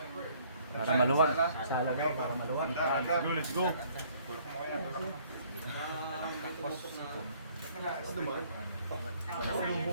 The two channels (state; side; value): inverted; both; correlation -0.60